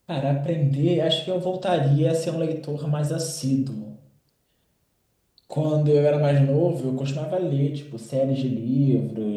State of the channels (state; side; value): identical; both; correlation 1.00